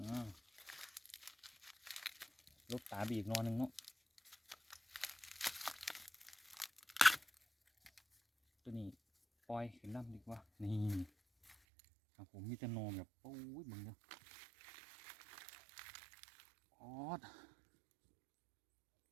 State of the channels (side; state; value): left; drops out; at 11.6 s